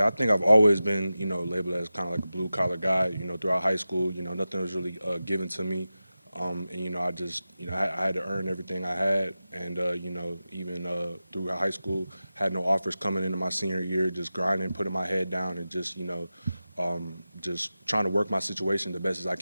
I think I've always been, labeled as kind of like a blue-collar guy. Throughout high school, nothing was really given to me. And, I just, I had to earn everything I had. And, even through high school, had no offers coming into my senior year, just grinding, putting my head down, and just, just trying to work my situation the best as I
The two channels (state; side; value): inverted; both; correlation -0.94